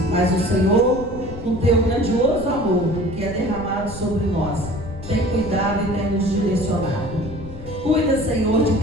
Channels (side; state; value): left; noise; rumble, 12 dB below the sound